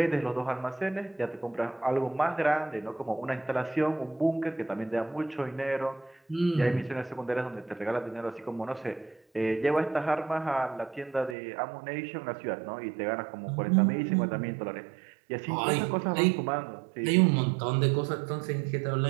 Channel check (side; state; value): left; drops out; at 11.4 s